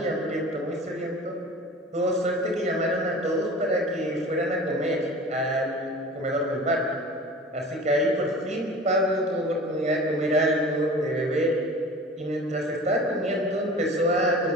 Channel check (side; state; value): both; normal; correlation 0.40